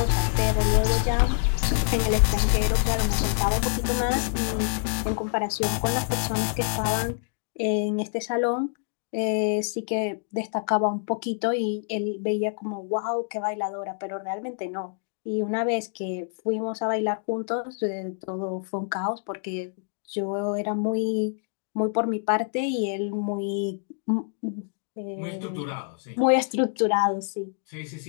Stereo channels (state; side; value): silent; right; digital silence